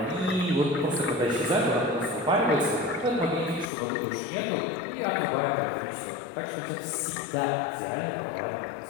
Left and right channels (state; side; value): drops out; right; at 3.7 s